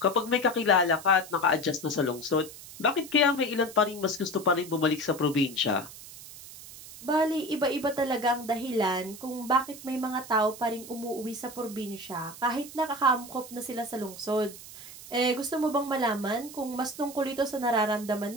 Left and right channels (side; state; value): right; noise; hiss, 15 dB below the sound